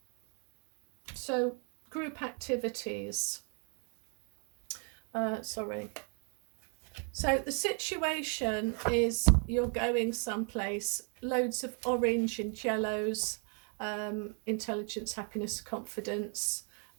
So group activities. So the situation is you're going someplace, loads of orange and yellows, intelligence, happiness, confidence.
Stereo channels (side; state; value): left; quieter; 39.9 dB